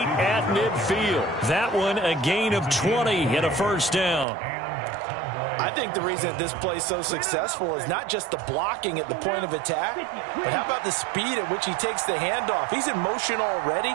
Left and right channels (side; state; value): left; drops out; at 4.2 s